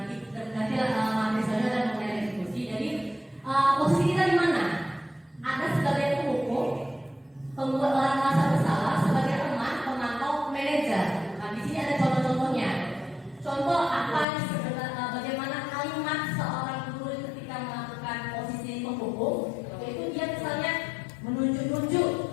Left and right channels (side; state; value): right; drops out; at 14.2 s